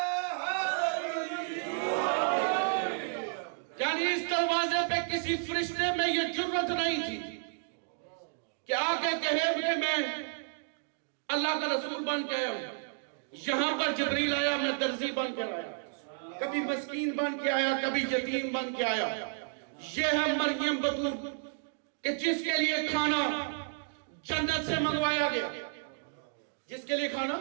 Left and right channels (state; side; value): silent; left; digital silence